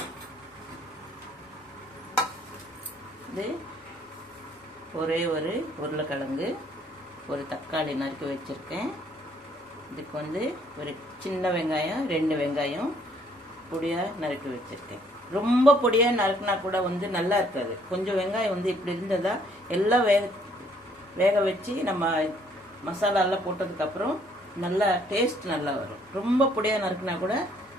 இது ஒரே ஒரு உருளைக்கிழங்கு, ஒரு தக்காளி நறுக்கி வச்சுருக்கேன். இதுக்கு ஒரு சின்ன வெங்காயம், 2 வெங்காயம் பொடியாக நறுக்கி வச்சுருக்கேன். ரொம்ப பொடியாக நறுக்கினா கூட நல்லா இருக்காது. கொஞ்சம் வெங்காயம் இப்படி இருந்ததா எல்லாம் வேக வச்சு நம்ம மசாலாலாம் போட்டதுக்கப்புறம் நல்லா டேஸ்ட் நல்லா வரும். ரொம்ப பொடியாக நறுக்கினா கூட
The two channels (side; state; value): both; normal; correlation 0.64